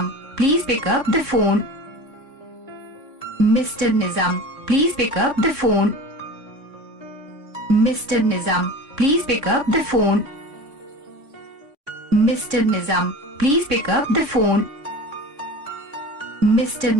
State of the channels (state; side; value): late; left; 3.5 ms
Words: please pick up the phone. Mr. Nizam, please pick up the phone. Mr. Nizam, please pick up the phone. Mr. Nizam, please pick up the phone. Mr.